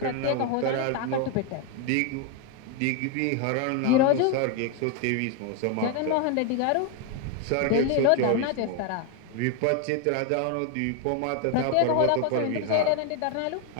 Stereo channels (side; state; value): both; different; correlation 0.01